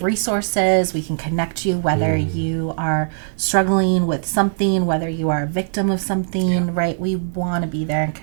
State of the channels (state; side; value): silent; left; 66 dB below the other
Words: resources. We can connect you, whether you are struggling with something, whether you are a victim of something, right? We want to be there and